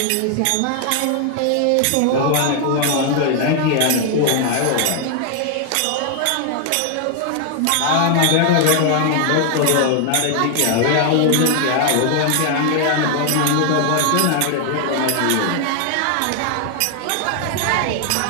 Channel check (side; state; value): both; different; correlation 0.00